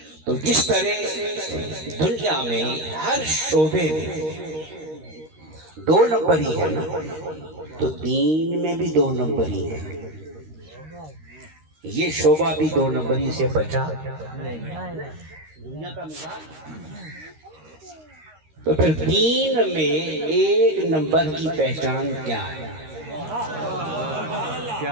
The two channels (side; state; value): left; late; 13 ms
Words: تو جس طرح دنیا میں ہر شعبے میں دو نمبر ہی ہے نا تو دین میں بھی دو نمبر ہی ہے. یہ شعبہ بھی دو نمبری سے بچا دنیا کا مزاج. تو پھر دین میں ایک نمبر کی پہچان کیا ہے؟